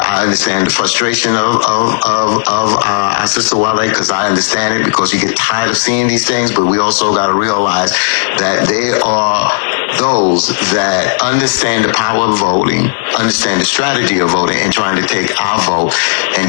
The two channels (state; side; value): silent; right; digital silence